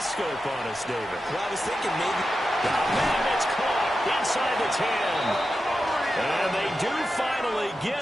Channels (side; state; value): both; normal; correlation 0.90